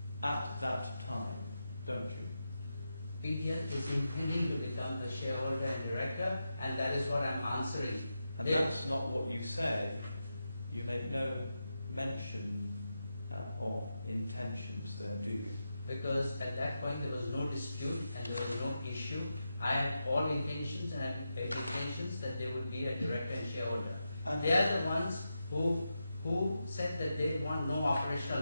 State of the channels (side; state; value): both; inverted; correlation -0.88